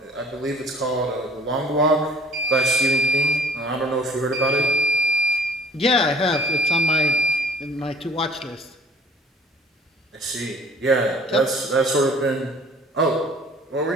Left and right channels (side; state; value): both; normal; correlation 0.52